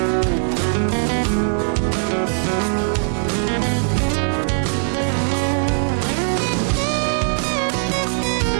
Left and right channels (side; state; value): left; silent; 66 dB below the other